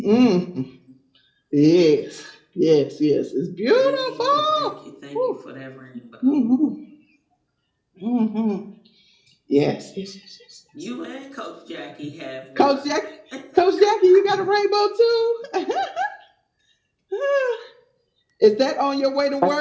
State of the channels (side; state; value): both; identical; correlation 1.00